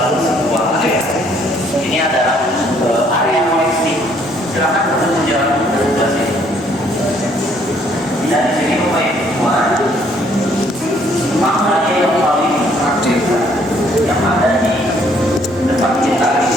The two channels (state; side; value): normal; both; correlation 0.65